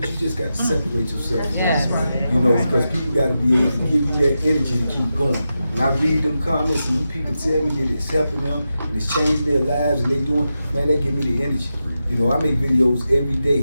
you just got to separate yourself. Because people got to be able to give you that energy to keep going. When I read them comments and them people tell me that it's helping them and it's changing their lives and they doing, man, that give me the energy. I make videos every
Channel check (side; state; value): both; inverted; correlation -0.90